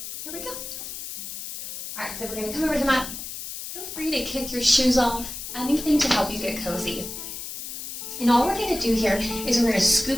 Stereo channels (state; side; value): noise; left; hiss, 8 dB below the sound